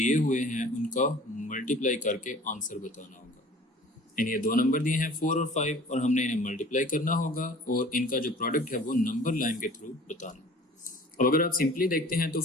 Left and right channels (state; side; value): normal; both; correlation 0.46